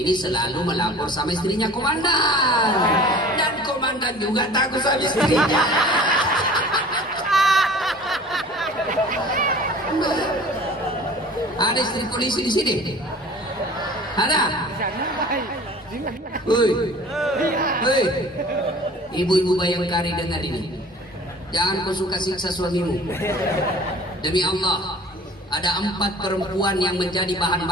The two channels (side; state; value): both; normal; correlation 0.45